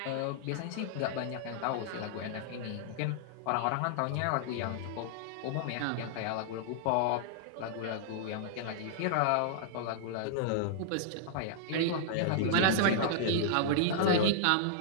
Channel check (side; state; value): both; different; correlation -0.01